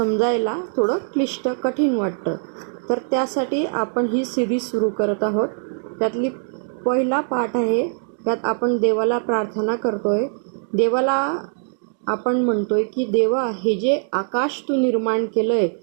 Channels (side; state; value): left; silent; 64 dB below the other